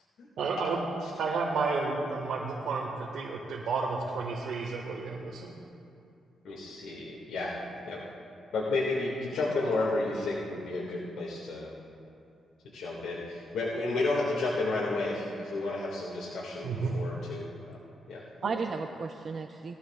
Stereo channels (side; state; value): both; normal; correlation 0.77